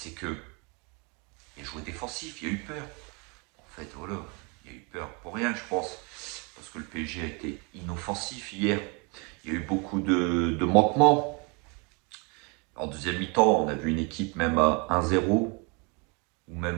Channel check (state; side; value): quieter; left; 30.7 dB